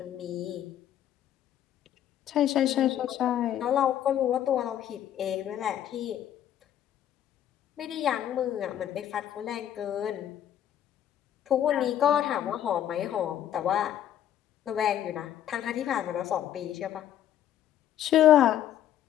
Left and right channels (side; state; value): right; quieter; 11.0 dB